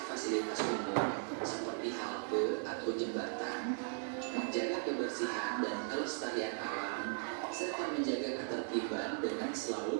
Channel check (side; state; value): left; silent; 53 dB below the other